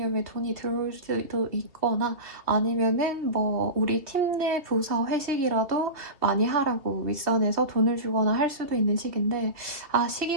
돈이 들어올 수도 있거나 아니면은 뭐 우리 팀 내 부서 회식이라도 많이 하라고 윗선에서 돈을 주거나 할 수도 있는 시기인데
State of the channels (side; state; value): left; late; 2.5 ms